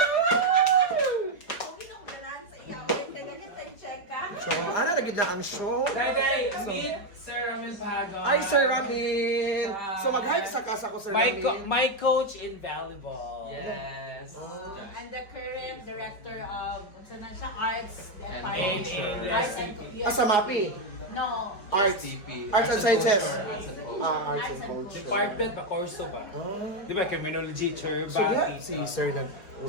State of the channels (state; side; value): late; right; 4.8 ms